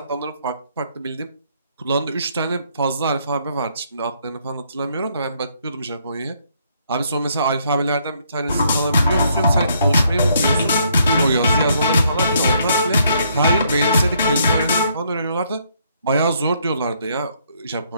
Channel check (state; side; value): inverted; both; correlation -0.70